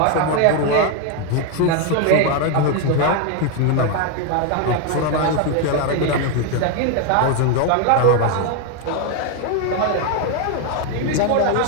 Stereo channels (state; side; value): different; both; correlation 0.01